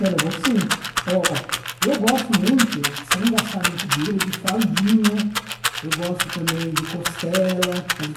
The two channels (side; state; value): both; identical; correlation 1.00